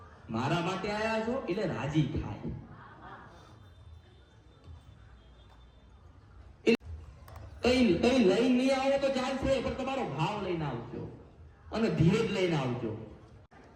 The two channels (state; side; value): identical; both; correlation 1.00